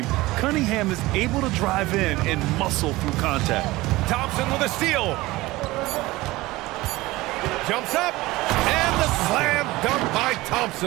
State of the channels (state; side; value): quieter; left; 19.5 dB